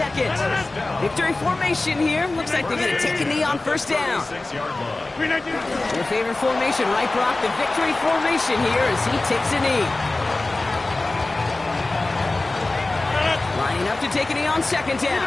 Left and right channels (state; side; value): quieter; right; 3.1 dB